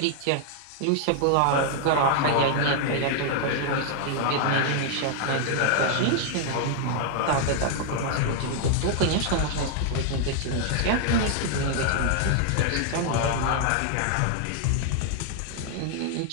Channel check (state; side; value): different; both; correlation 0.00